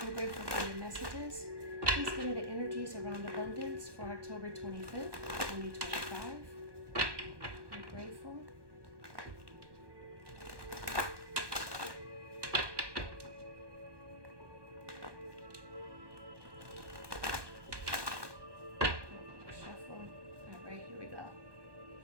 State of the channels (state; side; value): late; left; 1.2 ms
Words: I'm grateful for your messages. Please give me the energies around abundance for October 25th, 2025. I'm grateful. Shuffle. All right, here we go.